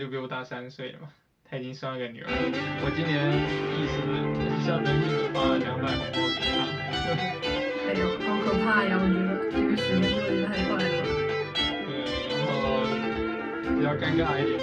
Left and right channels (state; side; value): identical; both; correlation 1.00